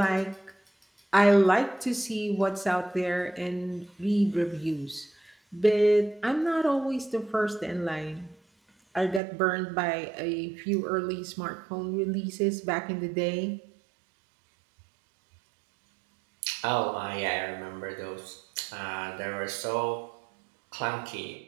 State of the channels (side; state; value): left; drops out; at 9.2 s